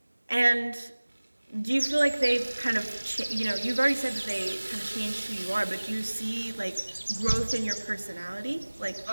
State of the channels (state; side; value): inverted; both; correlation -1.00